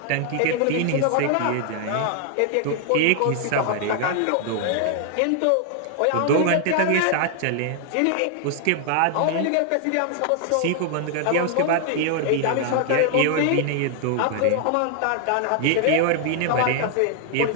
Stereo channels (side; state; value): both; different; correlation 0.00